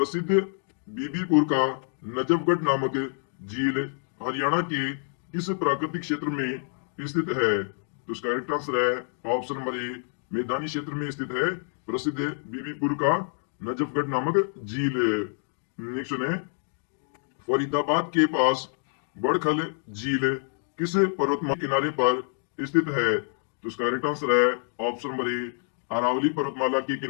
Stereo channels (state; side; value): silent; right; 60 dB below the other